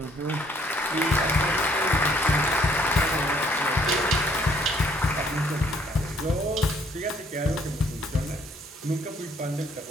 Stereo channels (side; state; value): both; normal; correlation 0.64